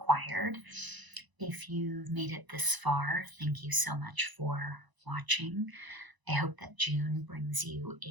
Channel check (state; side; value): late; left; 1.0 ms